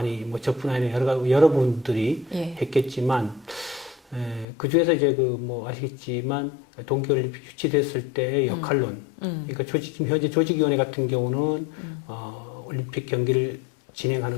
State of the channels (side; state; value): right; drops out; at 4.5 s